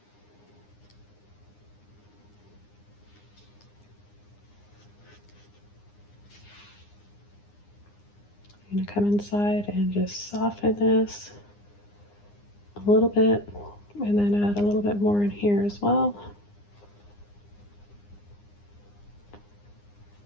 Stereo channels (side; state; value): right; late; 9.8 ms